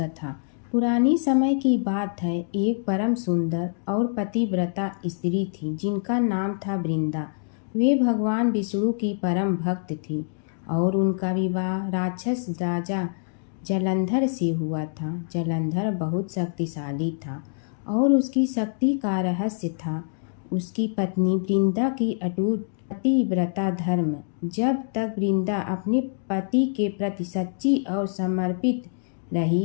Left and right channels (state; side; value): silent; right; digital silence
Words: पुरानी समय की बात है। एक परम सुंदर और पतिव्रता स्त्री थी जिनका नाम था वृंदा। वे भगवान विष्णु की परम भक्त थी और उनका विवाह राक्षस राजा जलंधर से हुआ था। जलंधर बहुत शक्तिशाली था और उसकी शक्ति का रहस्य था उसकी पत्नी वृंदा की अटूट पतिव्रता धर्म। जब तक वृंदा अपने पति के प्रति सच्ची और समर्पित